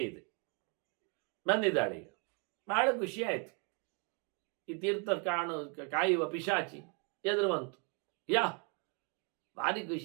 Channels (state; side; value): quieter; left; 36.4 dB